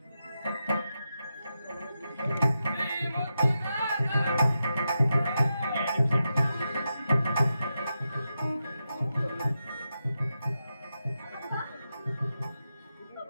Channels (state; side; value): inverted; both; correlation -0.88